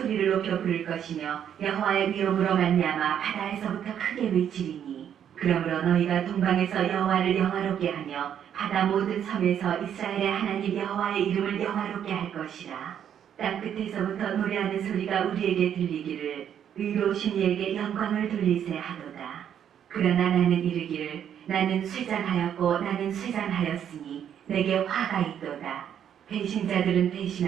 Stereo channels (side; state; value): left; quieter; 9.2 dB